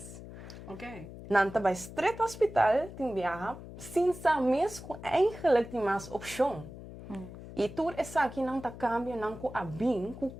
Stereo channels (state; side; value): noise; left; hum, 13 dB below the sound